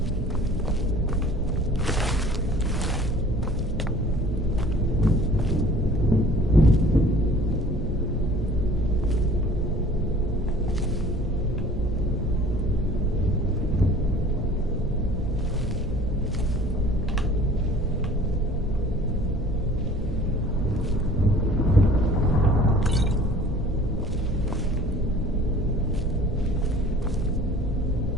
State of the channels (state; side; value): normal; both; correlation 0.49